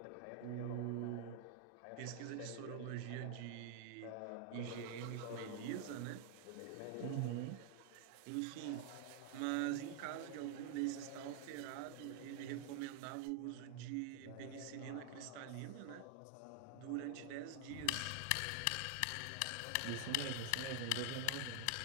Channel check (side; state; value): both; different; correlation 0.00